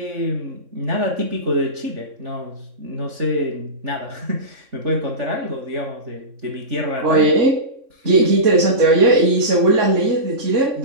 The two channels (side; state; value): left; late; 3.6 ms